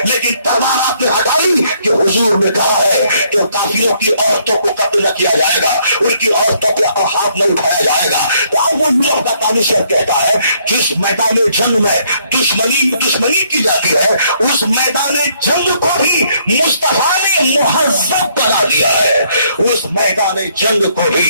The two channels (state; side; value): inverted; both; correlation -0.68